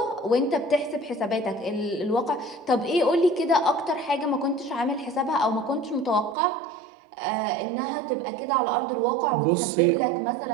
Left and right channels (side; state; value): left; drops out; at 6.4 s